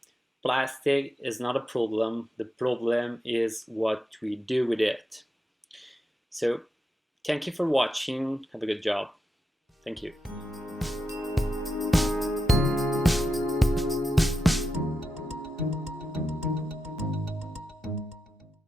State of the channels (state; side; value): normal; both; correlation 0.87